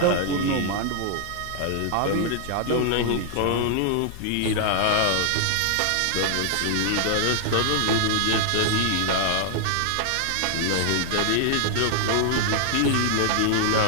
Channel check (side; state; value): both; different; correlation 0.00